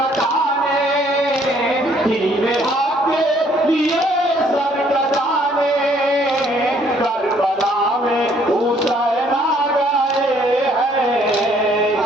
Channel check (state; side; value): normal; both; correlation 0.64